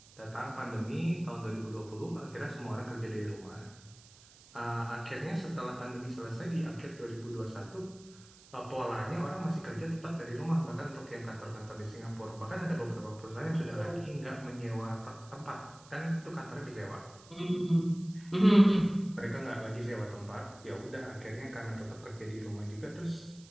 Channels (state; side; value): noise; right; hiss, 22 dB below the sound